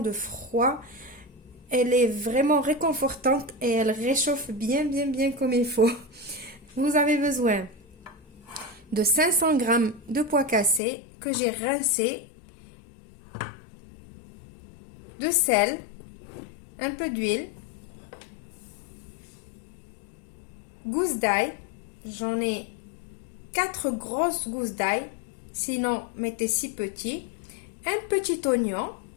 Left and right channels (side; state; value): right; drops out; at 10.8 s